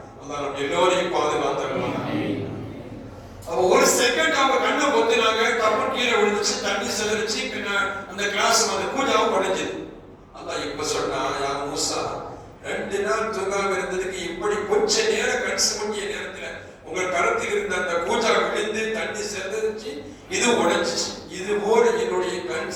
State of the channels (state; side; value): identical; both; correlation 1.00